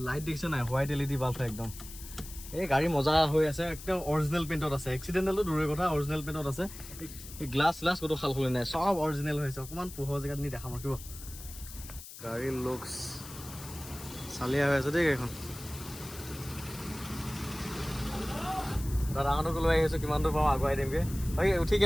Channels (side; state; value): left; noise; hiss, 14 dB below the sound